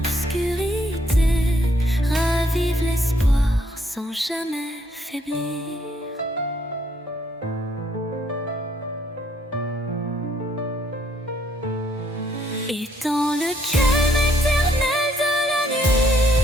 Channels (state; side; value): normal; both; correlation 0.69